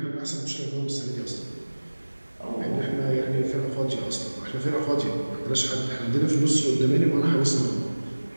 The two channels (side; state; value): both; inverted; correlation -1.00